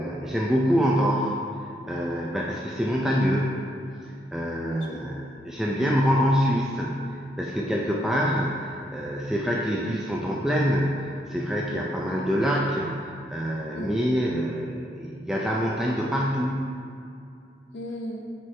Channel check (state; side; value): normal; both; correlation 0.76